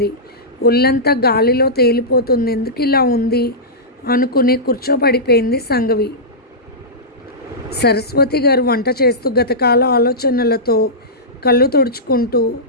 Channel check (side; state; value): both; normal; correlation -0.15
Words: ఒళ్ళంతా గాలిలో తేలిపోతుంది. ఎందుకు ఇలా ఉంది అనుకుని కూర్చోపడిపోయింది సంఘవి. సరస్వతి గారు వంట చేస్తూ గతకాల ఆలోచనలతో కళ్ళు తుడుచుకుంటూ